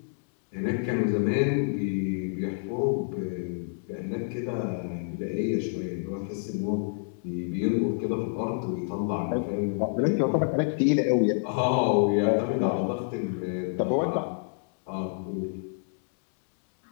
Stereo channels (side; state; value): right; silent; digital silence